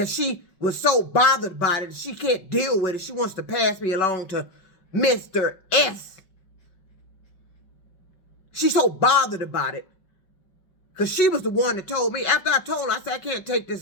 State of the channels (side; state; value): right; late; 5.3 ms